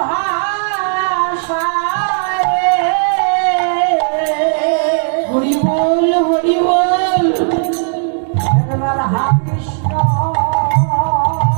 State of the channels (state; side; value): silent; left; digital silence